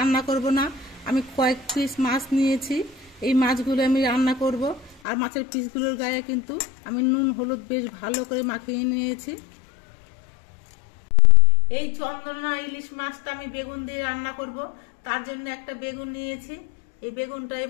করব না, আমি কয়েক পিস মাছ নিয়েছি। এই মাছগুলো আমি রান্না করব, আর মাছের পিসগুলোর গায়ে কিন্তু আমি নুন হলুদ বেশ ভালো করে মাখিয়ে নিয়েছি। এই চন্দনা ইলিশ মাছটা আমি বেগুন দিয়ে রান্না করব, তার জন্য একটা বেগুন নিয়েছি। এই বেগুনটা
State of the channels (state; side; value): drops out; right; at 5.0 s